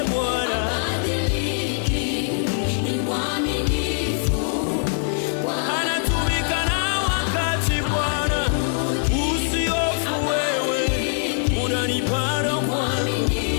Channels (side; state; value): right; silent; 60 dB below the other